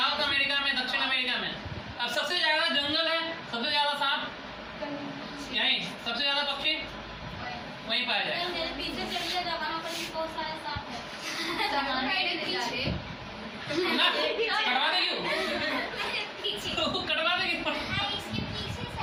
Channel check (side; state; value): both; identical; correlation 1.00